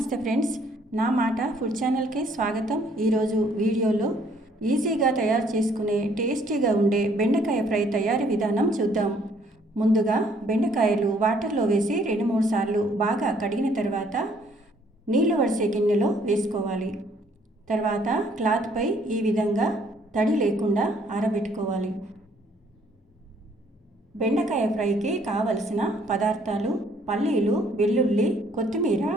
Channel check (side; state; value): both; normal; correlation 0.63